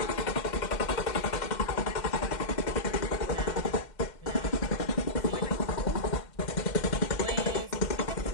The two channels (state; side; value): late; right; 2.1 ms